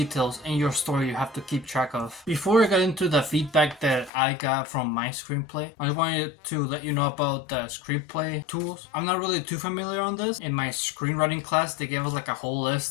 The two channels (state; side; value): drops out; right; at 4.1 s